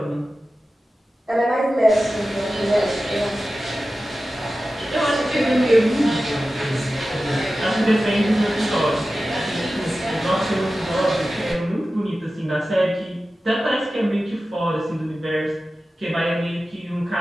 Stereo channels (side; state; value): both; normal; correlation 0.94